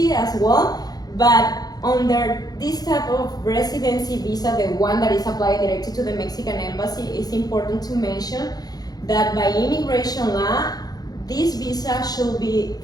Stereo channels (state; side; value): late; right; 0.19 ms